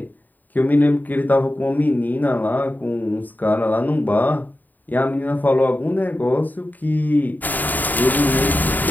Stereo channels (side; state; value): right; late; 0.086 ms